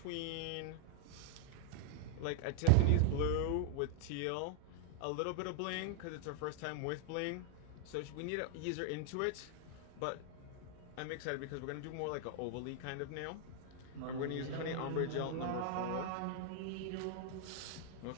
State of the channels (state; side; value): different; both; correlation -0.01